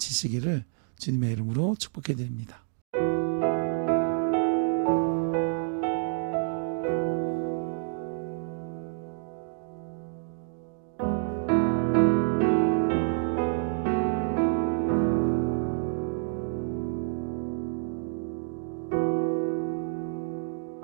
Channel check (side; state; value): left; silent; 59 dB below the other